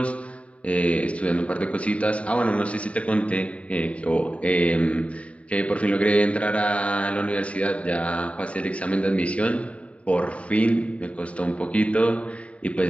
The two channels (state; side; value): late; right; 0.065 ms